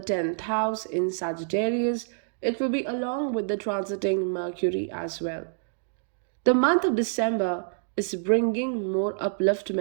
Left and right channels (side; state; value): left; silent; digital silence